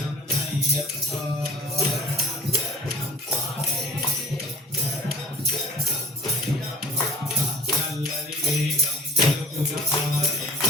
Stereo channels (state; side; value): normal; both; correlation 0.47